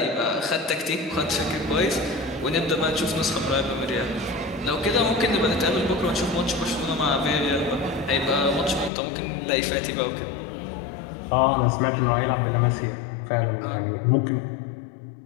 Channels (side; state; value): right; drops out; at 8.9 s